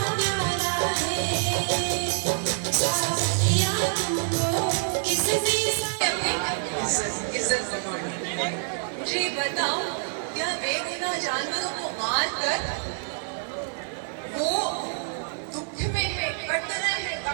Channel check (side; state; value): left; silent; digital silence